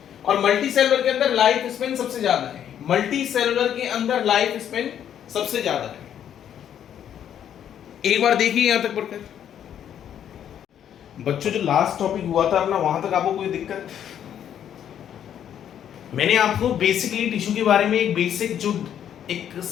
और मल्टी सेलुलर के अंदर लाइफ स्पेन सबसे ज्यादा है, मल्टी सेलुलर के अंदर लाइफ स्पेन सबसे ज्यादा है। एक बार देखिए यहां तक पढ़कर। बच्चों जो लास्ट टॉपिक हुआ था ना, वहां तक आपको कोई दिक्कत? मैंने आपको बेसिकली टिश्यू के बारे में एक बेसिक जो एक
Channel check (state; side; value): quieter; right; 9.7 dB